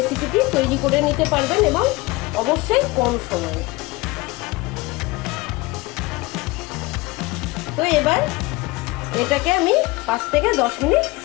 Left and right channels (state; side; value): quieter; right; 22.5 dB